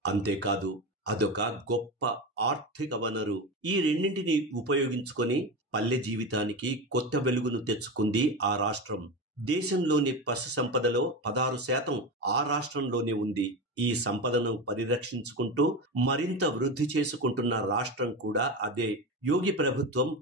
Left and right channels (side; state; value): both; normal; correlation 0.21